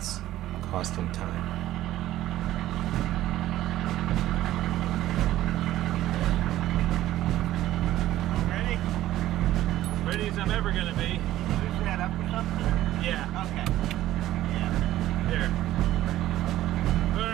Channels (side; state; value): left; quieter; 14.2 dB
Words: costing time. Ready as I'm ever going to be. Push that up or something? Yeah. Okay. Yeah. There.